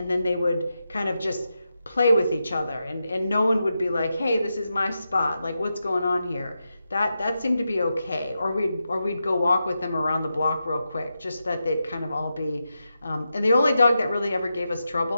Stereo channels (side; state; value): both; inverted; correlation -0.88